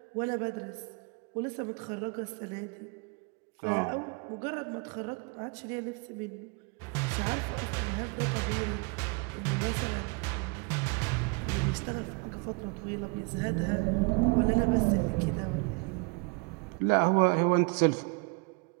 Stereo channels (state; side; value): quieter; left; 31.0 dB